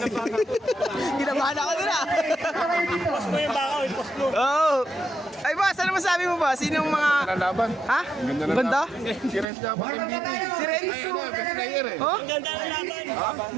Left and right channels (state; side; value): drops out; left; at 9.5 s